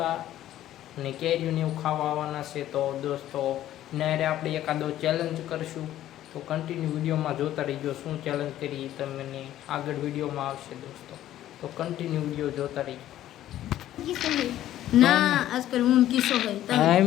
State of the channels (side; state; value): right; quieter; 12.9 dB